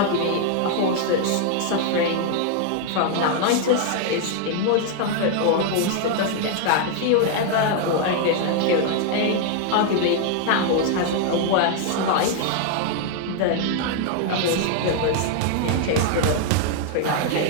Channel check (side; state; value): both; different; correlation 0.00